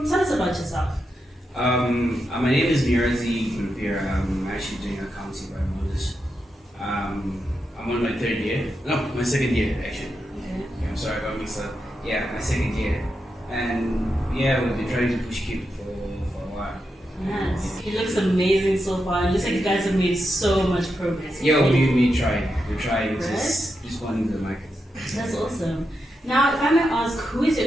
tell us about yourself. My name is Munyaradzi Gurupira. I'm actually doing accounting by Moses. I'm on my third year. No, my second year actually. Okay, I'm sorry about mixed up. Yeah, my second year. And yeah, we've been trying to push Cupid for a while. Nice. It looks amazing so far. It looks like you guys have made so much progress. Yeah, we try. We're trying right? just responding to the market. That's awesome. Now, if I may ask, who is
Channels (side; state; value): both; normal; correlation 0.86